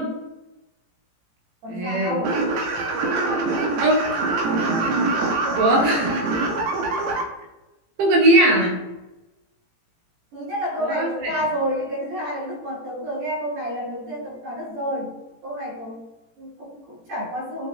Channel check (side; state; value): left; late; 18 ms